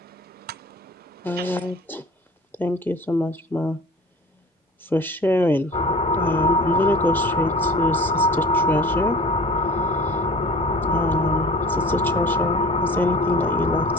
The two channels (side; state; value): both; normal; correlation 0.42